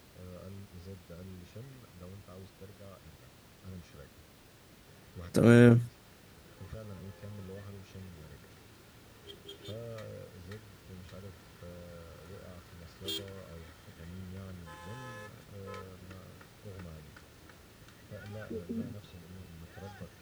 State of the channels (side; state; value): both; identical; correlation 1.00